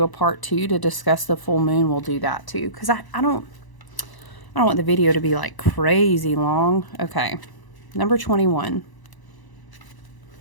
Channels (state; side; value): late; right; 1.0 ms